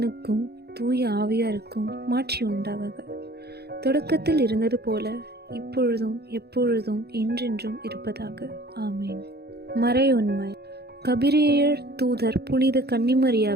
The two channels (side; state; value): left; late; 0.47 ms